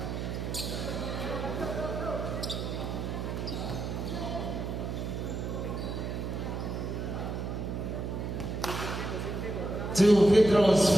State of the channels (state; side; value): noise; right; hum, 3 dB below the sound